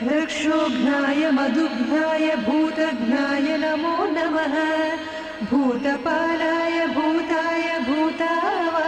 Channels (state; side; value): identical; both; correlation 1.00